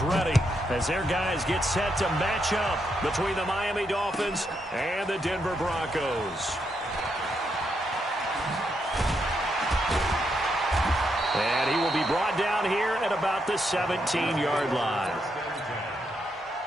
ready as their guys get set to match up between the Miami Dolphins and the Denver Broncos. And he will be brought down here at about the 17-yard line.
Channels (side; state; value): both; normal; correlation 0.80